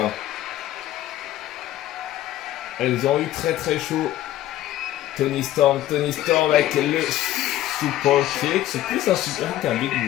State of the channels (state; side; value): quieter; right; 13.8 dB